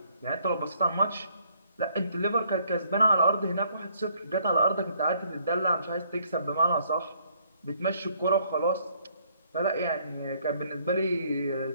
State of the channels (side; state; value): both; inverted; correlation -0.66